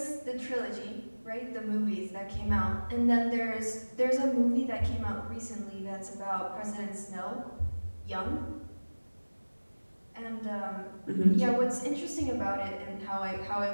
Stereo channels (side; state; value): both; inverted; correlation -1.00